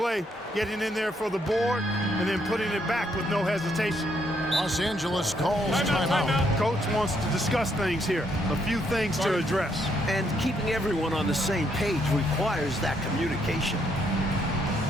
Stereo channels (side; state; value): both; normal; correlation 0.73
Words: getting in there for the board, and then putting it back with no hesitation. Los Angeles calls timeout. Coach wants to discuss things here. A few things to address. And keeping everyone on the same page requires that communication.